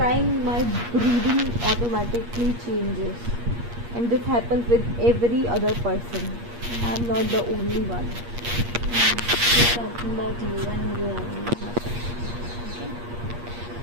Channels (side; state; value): left; late; 8.5 ms